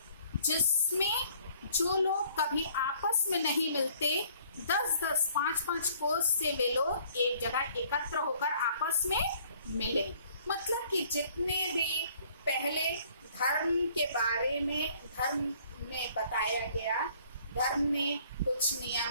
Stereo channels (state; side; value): inverted; both; correlation -0.59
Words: जिसमें जो लोग कभी आपस में नहीं मिलते 10-10, 5-5 कोस से वे लोग एक जगह एकत्र होकर आपस में मिले। मतलब कि जितने भी पहले धर्म के बारे में धर्म में बताया गया, धर्म ने कुछ